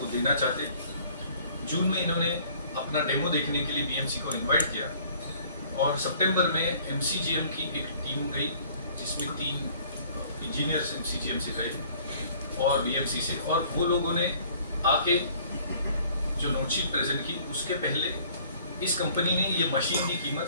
देना चाहते। जून में इन्होंने अपना डेमो देखने के लिए BMC को इनवाइट किया और सितंबर में MCGM की एक टीम गई जिसमें 3 इंजीनियर्स MCGM से गए और BMC से, और वो लोगों ने आके जो नोटशीट प्रेजेंट की उसके पहले इस कंपनी ने ये मशीन की कीमत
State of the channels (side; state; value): both; inverted; correlation -0.55